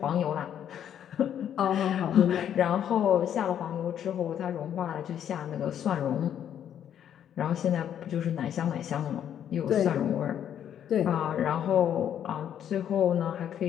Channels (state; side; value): quieter; right; 9.7 dB